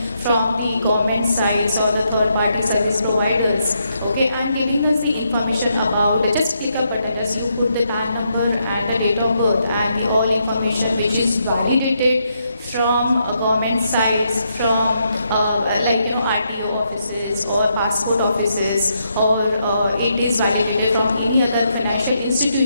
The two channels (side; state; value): both; inverted; correlation -0.79